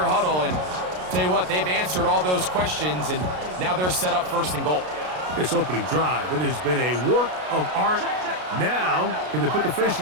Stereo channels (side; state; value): left; late; 33 ms